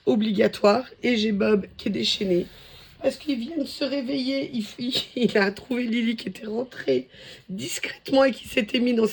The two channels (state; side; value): identical; both; correlation 1.00